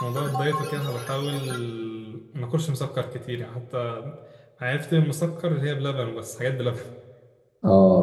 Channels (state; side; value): identical; both; correlation 1.00